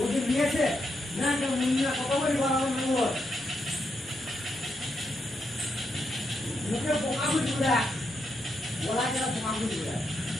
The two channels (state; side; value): normal; both; correlation 0.81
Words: নিয়েছে না কেউ মন্দির কত করে বানানো না হয় মুখে পোকা বুঝবো দেখ বলা গেলে পোকা বুঝবো দেখ